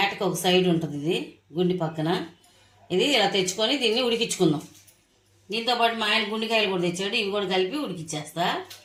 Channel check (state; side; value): identical; both; correlation 1.00